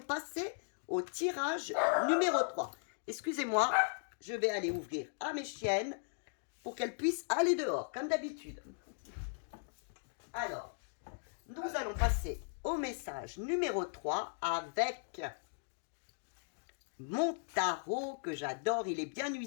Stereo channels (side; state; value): right; silent; digital silence